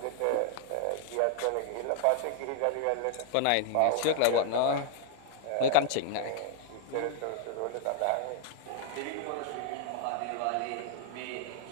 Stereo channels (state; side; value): different; both; correlation 0.00